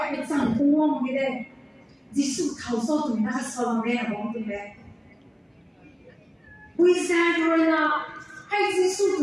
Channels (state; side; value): identical; both; correlation 1.00